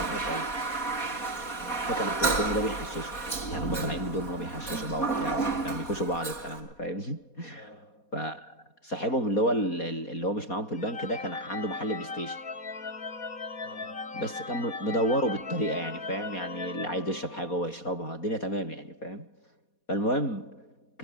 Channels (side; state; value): right; late; 4.2 ms